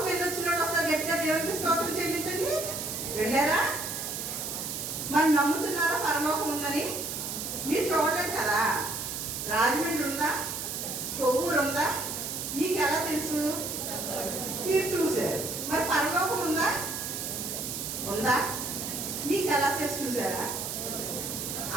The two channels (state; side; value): noise; right; hiss, 4 dB below the sound